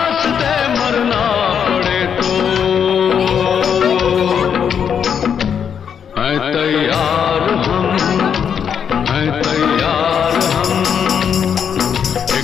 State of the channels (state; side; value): quieter; right; 7.7 dB